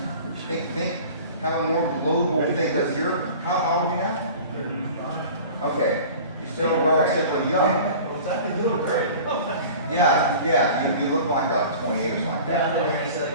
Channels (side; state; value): both; inverted; correlation -0.41